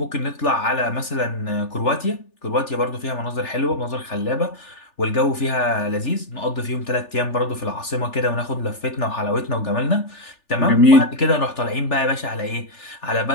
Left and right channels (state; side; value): late; right; 3.4 ms